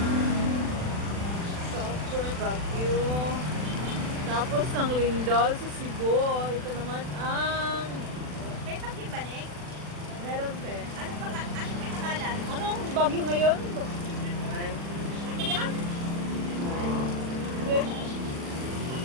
Super Baguio. Tapos ng Lindol sa Cebu. Ito naman ang... May pagkibanig? Meron pe. Anong pinangalan? Anong bagyo ngayon? Ano yan?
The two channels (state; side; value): late; left; 40 ms